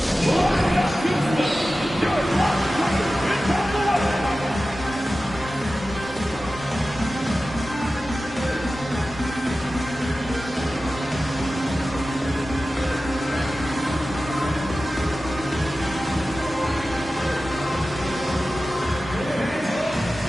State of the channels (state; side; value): normal; both; correlation 0.95